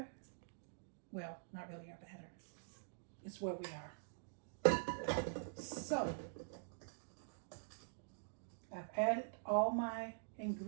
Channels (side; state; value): left; silent; digital silence